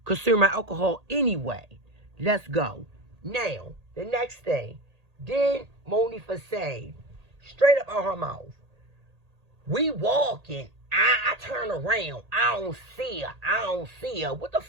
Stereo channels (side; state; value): left; late; 1.8 ms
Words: consume alcohol anyway. Let's go. Now, the next thing. Then Monifa said, straight up out her mouth, we walking. I turn around. I don't see her. I don't see her. What the